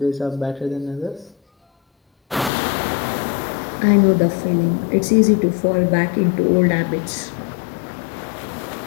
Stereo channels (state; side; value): drops out; right; at 2.5 s